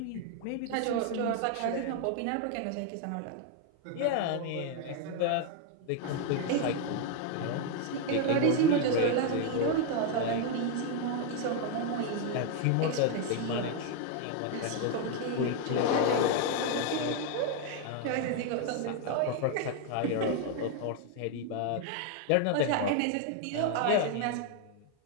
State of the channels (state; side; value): different; both; correlation 0.00